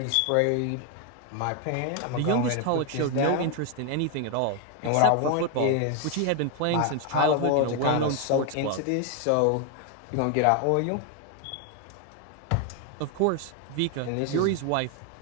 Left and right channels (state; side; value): different; both; correlation 0.01